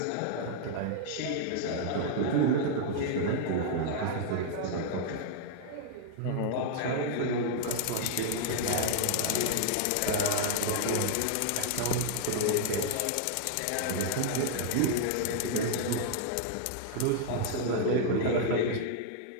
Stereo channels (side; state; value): both; different; correlation -0.01